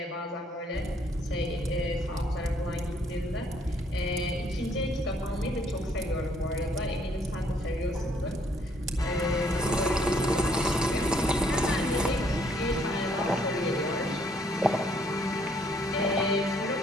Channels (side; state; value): both; normal; correlation 0.66